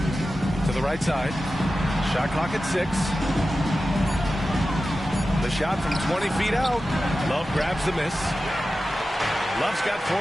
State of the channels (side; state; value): both; normal; correlation 0.93